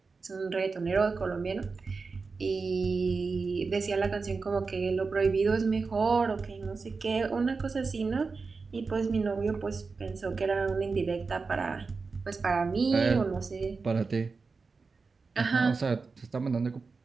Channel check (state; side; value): quieter; left; 4.5 dB